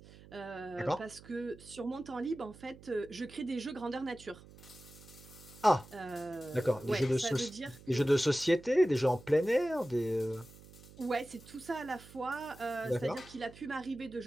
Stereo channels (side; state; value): right; noise; hum, 20 dB below the sound